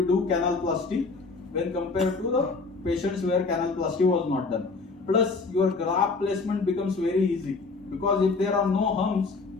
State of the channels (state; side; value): quieter; right; 4.1 dB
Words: do canalplasty when compared to the patients where canalplasty was not done. Plus your graft placement becomes very easy because if there are no humps,